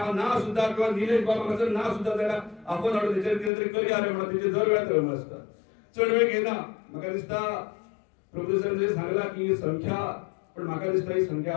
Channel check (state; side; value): drops out; right; at 3.5 s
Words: ना सुद्धा किंवा निलेश बाब हांगासर ना सुद्धा जाल्यार आपूण हाडून तेचेर कितें तरी करया रे म्हणून तेचे दर वेळार तळमळ आसता. चड वेळ घेयना. म्हाका दिसता प्रभुसरान जे सांगला की संख्या पण म्हाका दिसता ही संख्या